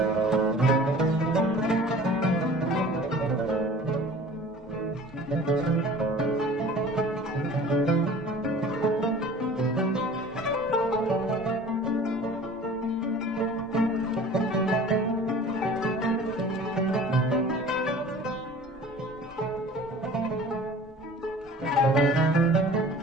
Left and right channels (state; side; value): normal; both; correlation 0.45